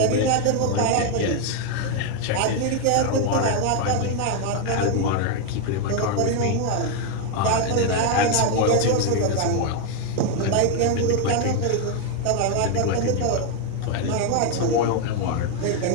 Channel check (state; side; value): different; both; correlation 0.01